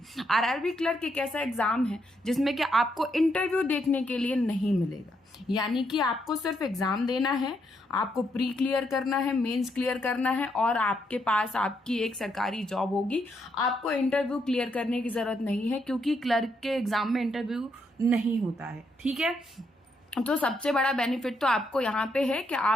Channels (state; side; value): normal; both; correlation 0.77